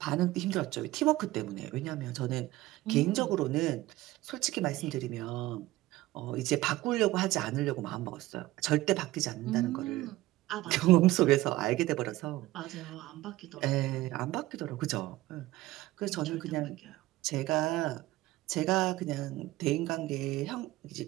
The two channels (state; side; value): quieter; left; 17.4 dB